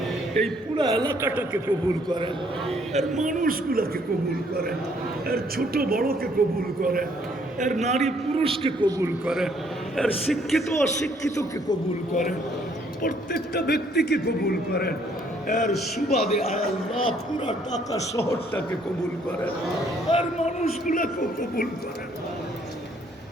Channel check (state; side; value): normal; both; correlation 0.65